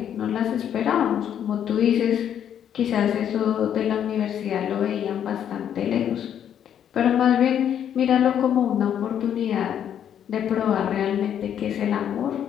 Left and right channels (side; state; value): right; quieter; 9.4 dB